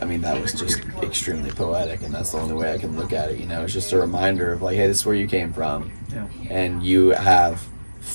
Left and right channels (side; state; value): both; inverted; correlation -1.00